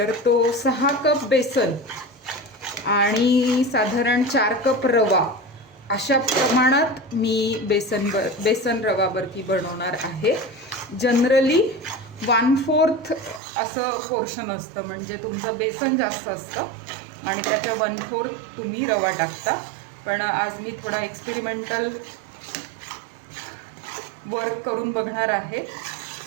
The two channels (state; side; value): drops out; left; at 13.4 s